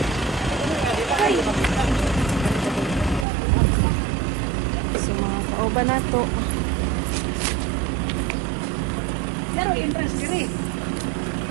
So mga kauban na to. Pero interest diri.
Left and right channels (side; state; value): left; drops out; at 3.2 s